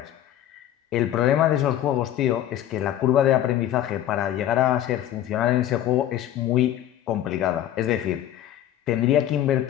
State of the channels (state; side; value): quieter; right; 12.0 dB